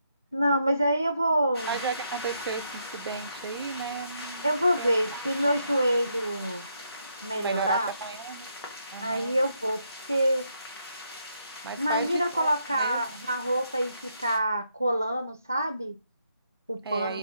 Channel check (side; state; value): both; inverted; correlation -0.77